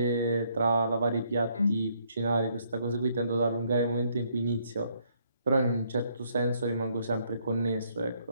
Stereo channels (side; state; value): both; inverted; correlation -0.70